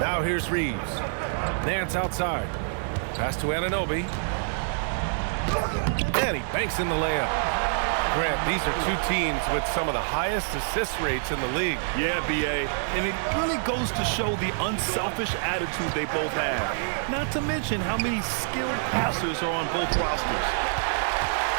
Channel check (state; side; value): silent; left; digital silence